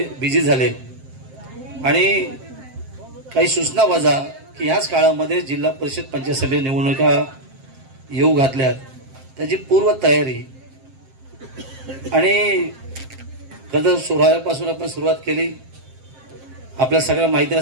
बिझी झाले आणि काही सूचना वजा की ह्याच काळामध्ये जिल्हा परिषद पंचायत समिती निवडणुका येऊ घातल्यात, त्याची पूर्व तयारी आणि खरं सोहळ्यापासून आपण सुरुवात केली। आपल्या सगळ्या माहिती आहे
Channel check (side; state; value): left; late; 7.6 ms